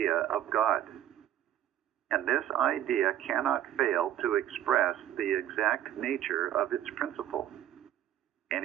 of God. And this idea cannot fail to express the exact nature of its principle,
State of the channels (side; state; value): left; quieter; 11.8 dB